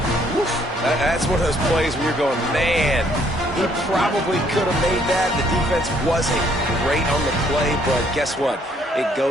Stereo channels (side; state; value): both; normal; correlation 0.66